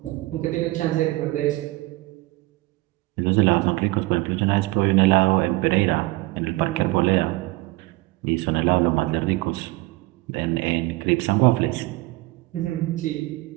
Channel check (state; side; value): quieter; left; 21.1 dB